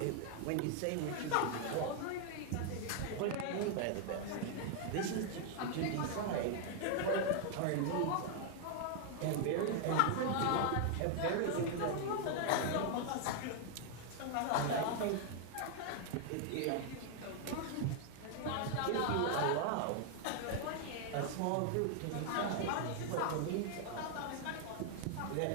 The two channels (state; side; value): different; both; correlation 0.00